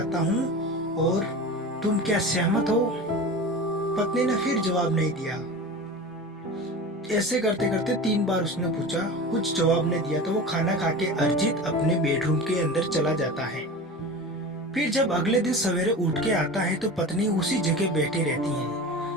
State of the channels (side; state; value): both; normal; correlation 0.32